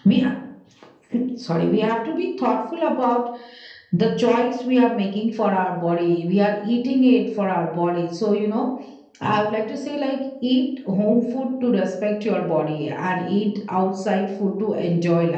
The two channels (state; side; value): identical; both; correlation 1.00